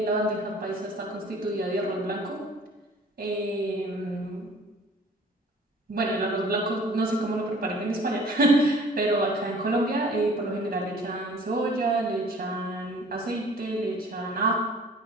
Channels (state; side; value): normal; both; correlation 0.51